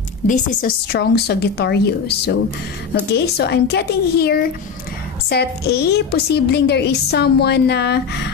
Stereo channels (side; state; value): right; quieter; 5.9 dB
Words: this is a strong Sagittarius. So, okay, so I'm getting here Set A, posibleng there is someone na,